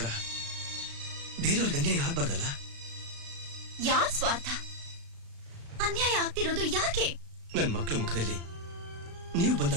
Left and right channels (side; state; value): left; late; 36 ms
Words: ಬೇರೆಯವ್ರಿಗೆ ಅನ್ಯಾಯ ಆಗ್ಬಾರ್ದಲ್ಲ. ಯಾರ್ ಸ್ವಾರ್ಥ? ಅನ್ಯಾಯ ಆಗ್ತಿರೋದು ಯಾಕೆ? ನನ್ ಮಕ್ಕಳ ಮುಖದಲ್ಲಿ ನೀವು